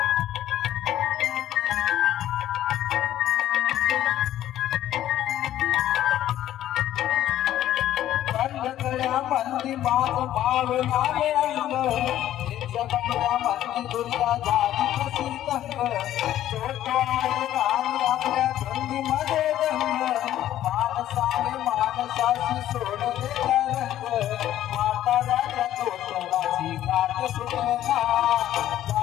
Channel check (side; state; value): right; quieter; 12.5 dB